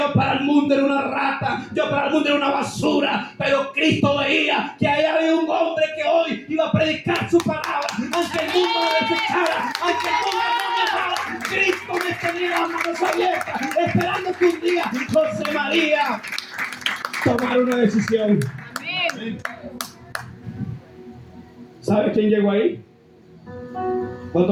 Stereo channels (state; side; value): identical; both; correlation 1.00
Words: para el mundo era una rata, yo para el mundo era una basura, pero Cristo veía que ahí había un hombre que hoy iba a predicar su palabra, aunque el mundo me desechara, aunque el mundo no me amara. Cristo me tenía las manos abiertas, esperando que un día José María tomara una decisión. Amén. ¿Sabe quién llegó ahí?